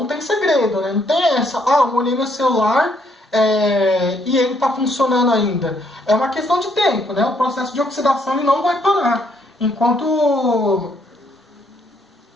tem segredo, né? Não tem essa, molhei meu celular e ele está funcionando ainda. É uma questão de tempo, né? O processo de oxidação ele não vai parar enquanto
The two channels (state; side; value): normal; both; correlation 0.70